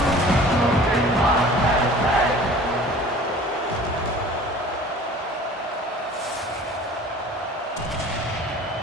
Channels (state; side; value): normal; both; correlation 0.45